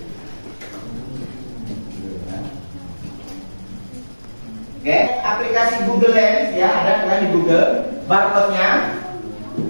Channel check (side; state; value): both; inverted; correlation -1.00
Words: Oke, aplikasi Google Lens ya, ada kan di Google. Barcode-nya